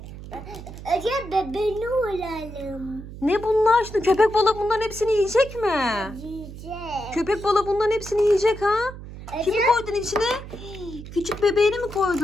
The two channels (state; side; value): noise; right; hum, 13 dB below the sound